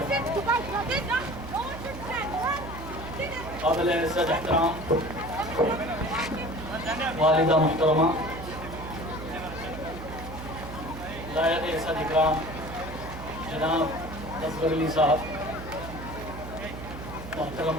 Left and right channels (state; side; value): noise; right; hum, 10 dB below the sound